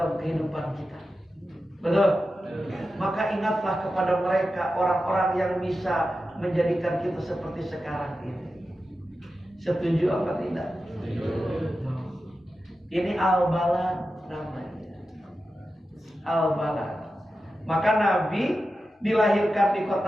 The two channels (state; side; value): normal; both; correlation 0.92